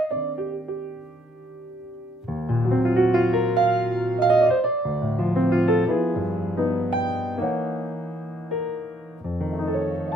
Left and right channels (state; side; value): normal; both; correlation 0.71